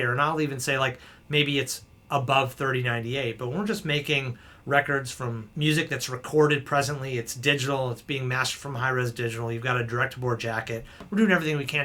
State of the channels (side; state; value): both; identical; correlation 1.00